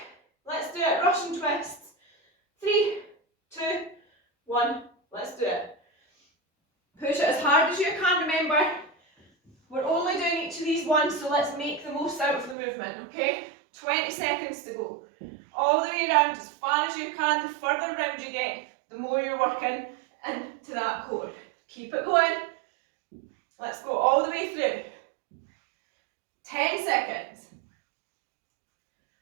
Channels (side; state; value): left; drops out; at 12.6 s